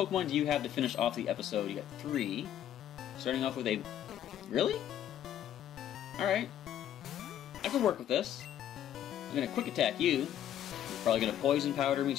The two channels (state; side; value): quieter; right; 10.8 dB